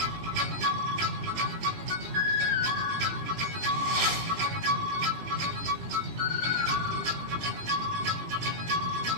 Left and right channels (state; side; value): late; left; 18 ms